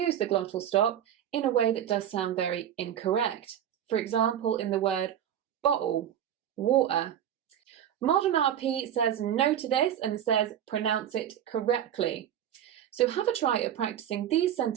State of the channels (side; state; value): left; quieter; 10.2 dB